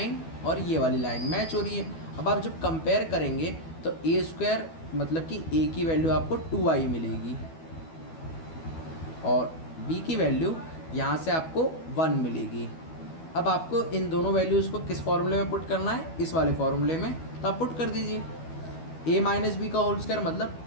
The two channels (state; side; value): late; right; 12 ms